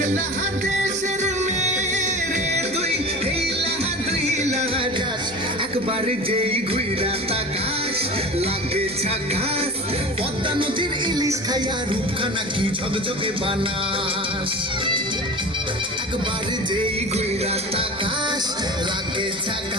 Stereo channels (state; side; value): noise; left; hum, 24 dB below the sound